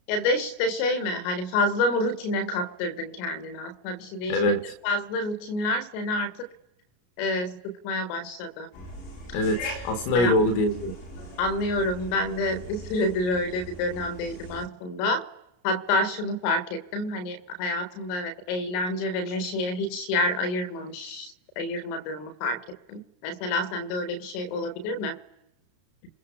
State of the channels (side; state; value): right; late; 33 ms